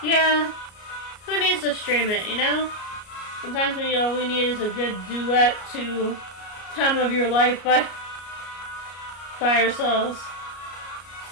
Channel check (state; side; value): late; right; 33 ms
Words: Yeah, who needs to stream it, you know? Sometimes all we need is a good duet to Time of Your Life by ourselves.